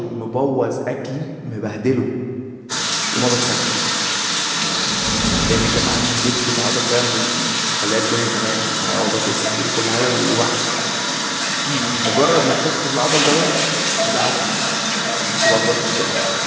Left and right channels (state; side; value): identical; both; correlation 1.00